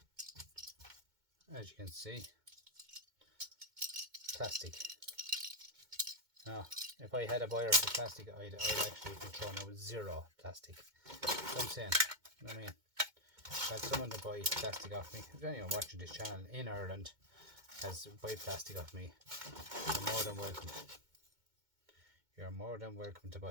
As you can see, plastic. Now, if I had a buyer for plastic, I'd actually be throwing out zero plastic. So I'm saying, you know what I mean? If I had someone to buy plastic off me, if anyone watching this channel in Ireland has to buy plastic off me, you're more than welcome. You're more than welcome to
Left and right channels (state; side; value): late; left; 2.2 ms